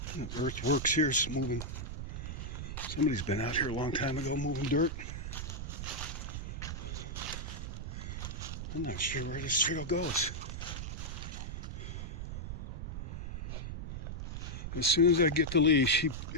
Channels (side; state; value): right; noise; rumble, 5 dB below the sound